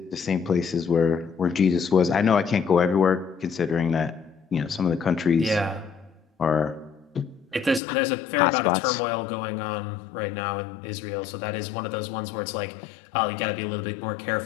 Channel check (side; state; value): right; drops out; at 7.8 s